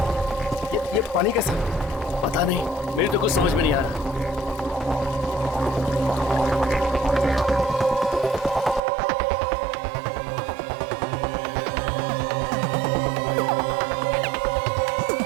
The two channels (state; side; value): drops out; left; at 8.8 s